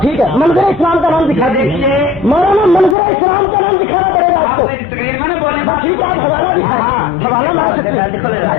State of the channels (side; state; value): right; drops out; at 3.0 s